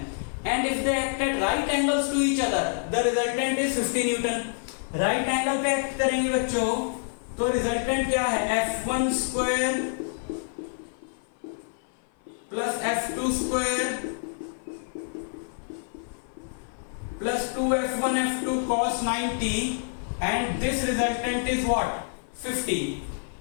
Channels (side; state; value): right; silent; 56 dB below the other